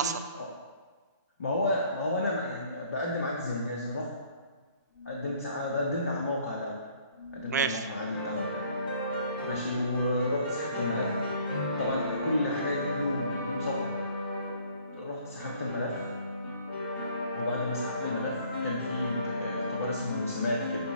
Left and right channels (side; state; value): both; inverted; correlation -0.59